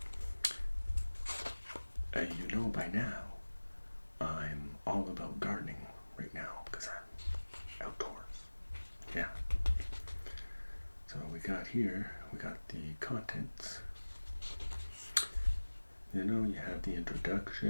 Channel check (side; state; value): both; inverted; correlation -1.00